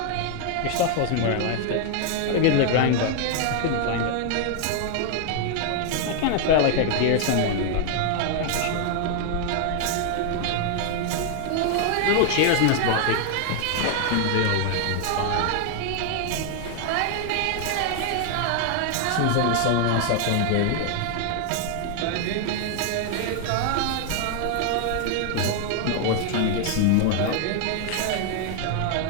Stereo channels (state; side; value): different; both; correlation 0.00